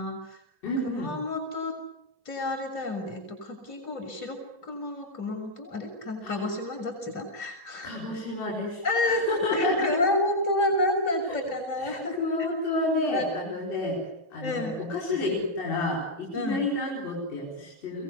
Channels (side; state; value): right; late; 2.9 ms